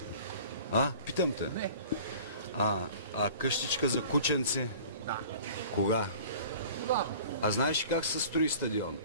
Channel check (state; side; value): inverted; both; correlation -0.44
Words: Питам те. Не. А къщичка за кученци? Да. Кога? Да. А знаеш как се строи стадион?